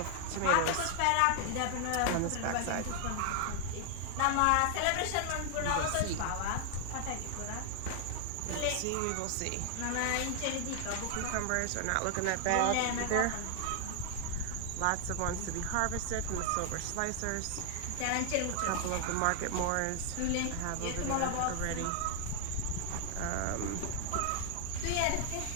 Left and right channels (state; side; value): different; both; correlation 0.00